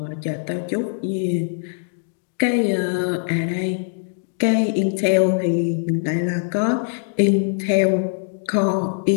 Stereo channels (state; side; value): silent; right; digital silence